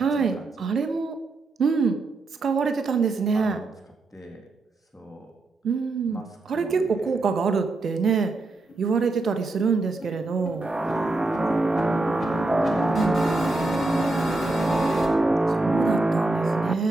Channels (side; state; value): left; quieter; 3.1 dB